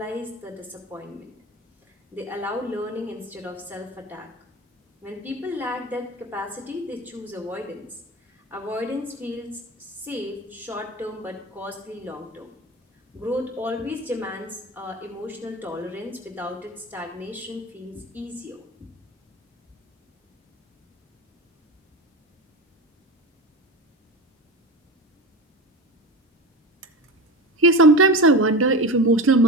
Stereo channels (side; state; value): both; normal; correlation 0.27